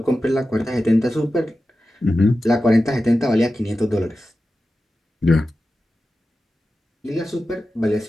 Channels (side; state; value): both; normal; correlation 0.93